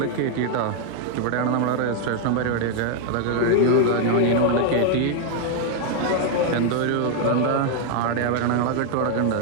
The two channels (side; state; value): both; different; correlation 0.00